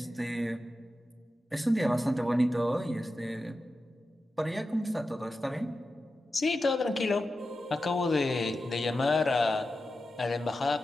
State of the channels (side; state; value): both; normal; correlation 0.91